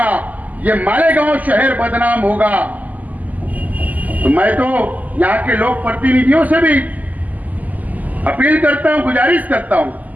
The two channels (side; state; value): left; late; 0.079 ms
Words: ये मालेगांव शहर बदनाम होगा, तो मैं तो यहां के लोक प्रतिनिधियों से भी अपील करता हूं, गुजारिश करता हूं,